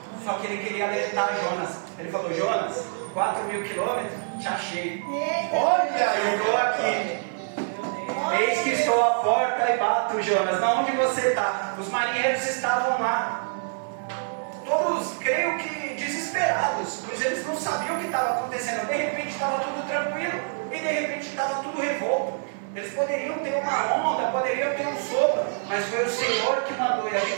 Só que ele queria alertar Jonas. Ele falou: Jonas, 4.000 quilômetros, te achei. Olha, eu estou aqui. Eis que estou à porta e bato, Jonas. Na onde você está? Os marinheiros estavam lá, todos, creio que desesperados, pois eles não sabiam o que estava acontecendo. De repente estava tudo tranquilo e de repente estava tudo revolto. Eles poderiam ter uma onda, poderiam ter um sopro, mas foi o Senhor que mandou. E a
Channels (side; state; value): left; silent; 61 dB below the other